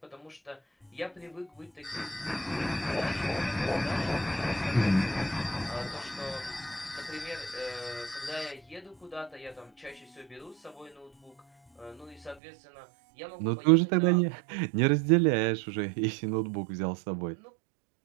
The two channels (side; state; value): left; drops out; at 12.4 s